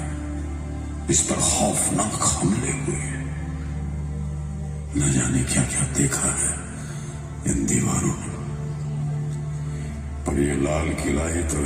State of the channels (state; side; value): identical; both; correlation 1.00